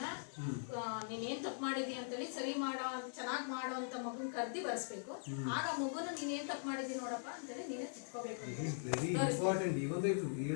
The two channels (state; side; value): silent; right; digital silence